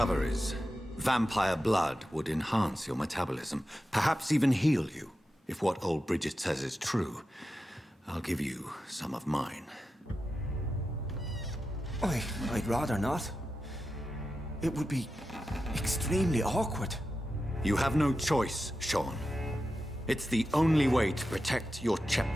Vampire blood would enhance your metabolism, perhaps even heal you. If what old Bridget says is true, I'll give you some of mine. I'd rather not. It would be extremely awkward. You have no choice, Sean. It's the only way to protect your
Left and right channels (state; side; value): normal; both; correlation 0.91